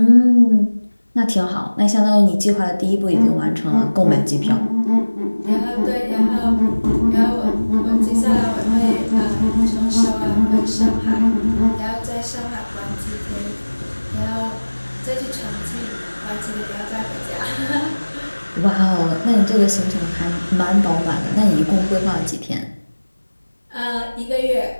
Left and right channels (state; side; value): inverted; both; correlation -1.00